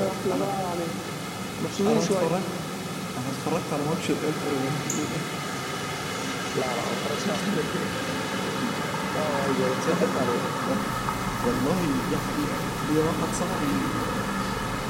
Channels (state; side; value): identical; both; correlation 1.00